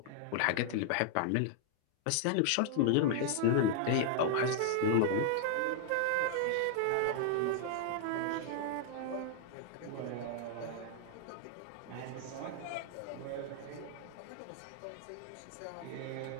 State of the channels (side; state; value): both; different; correlation 0.00